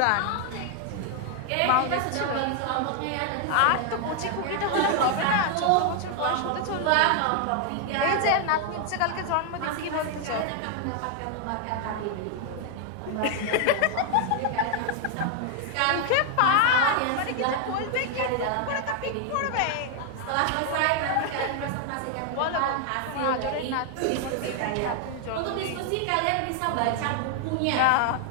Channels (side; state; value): both; different; correlation 0.00